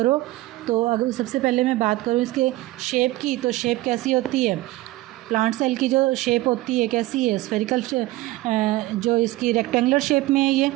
तो अगर सबसे पहले मैं बात करूँ इसके शेप की, तो शेप कैसी होती है? प्लांट सेल की जो शेप होती है कैसी है? स्फेरिकल, जो इसकी रेक्टेंगुलर शेप में है ये।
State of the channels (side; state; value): left; quieter; 18.0 dB